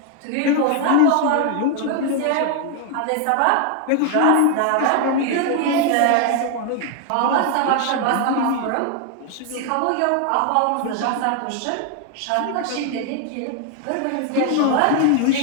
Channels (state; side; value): different; both; correlation 0.00